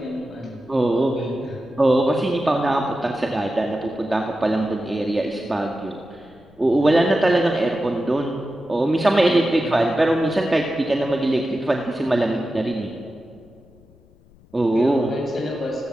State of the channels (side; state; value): left; noise; rumble, 28 dB below the sound